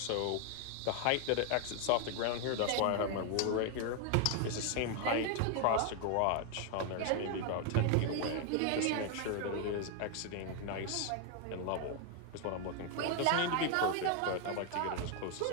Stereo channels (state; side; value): different; both; correlation 0.01